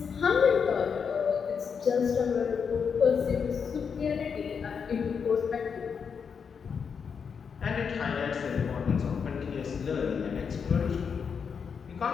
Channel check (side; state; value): right; quieter; 6.4 dB